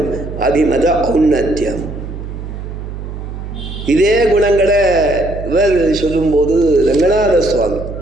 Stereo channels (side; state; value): right; noise; hum, 9 dB below the sound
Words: அபிமத ஔன்னத்தியம். இதே குணங்களை இவர் சொல்லும்போது ரங்கநாத சுவாமி